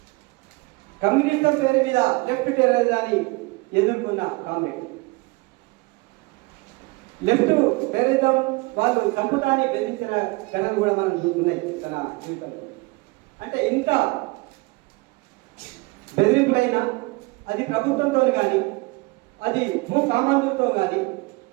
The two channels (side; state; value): left; quieter; 25.2 dB